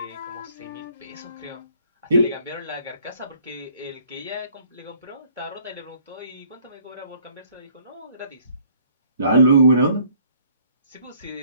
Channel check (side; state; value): both; inverted; correlation -0.60